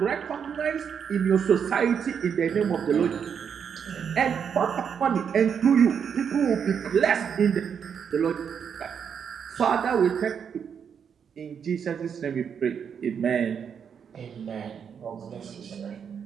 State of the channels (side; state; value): left; quieter; 7.3 dB